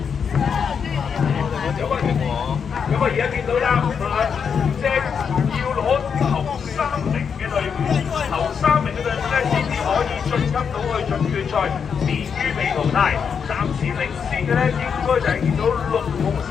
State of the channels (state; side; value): quieter; right; 6.7 dB